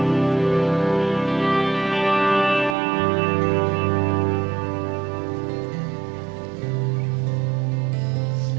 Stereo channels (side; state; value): left; drops out; at 2.8 s